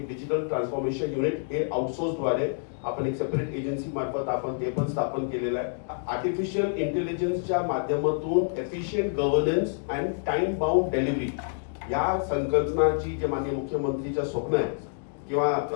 डिजिटल ट्रान्सफॉर्मेशन युनिट हे आउटसोर्स द्वारे आपण एक सेपरेट एजन्सी मार्फत आपण ते पण स्थापन केलेलं आहे। आर्टिफिशियल इंटेलिजन्सच्या माध्यमातून efficient governance and time bound delivery या संकल्पनाची जे माननीय मुख्यमंत्रीचं स्वप्न आहे किंवा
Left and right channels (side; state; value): right; silent; digital silence